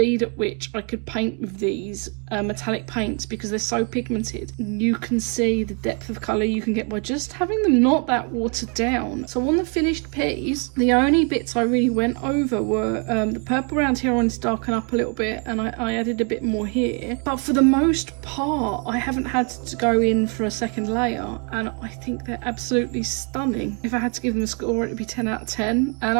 at which I could paint with these metallic paints, because they're so pigmented. You can see the depth of colour you can get by just having them not that watered down. So on the finished piece, the only bits I really went over were the purple around here I wanted to darken up a little bit, and I added a bit more here. But for the most part, I haven't had to go in for a second layer, and I think they're absolutely stunning. If I had to give them a score, it would be 10 out of 10. And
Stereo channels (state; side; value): quieter; left; 36.9 dB